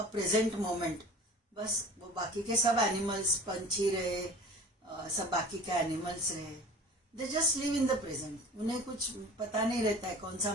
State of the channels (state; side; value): normal; both; correlation 0.41